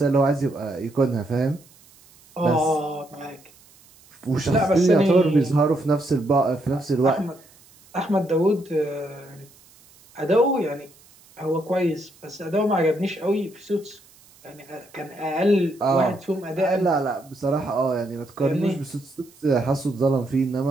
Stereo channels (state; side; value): noise; right; hiss, 27 dB below the sound